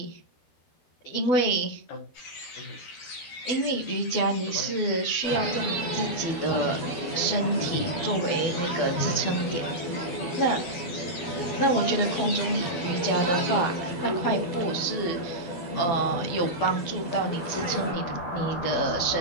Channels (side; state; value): right; late; 12 ms